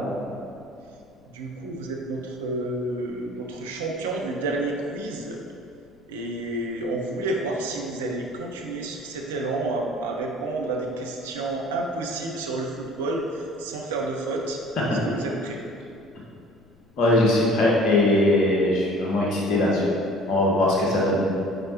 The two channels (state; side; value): noise; left; rumble, 29 dB below the sound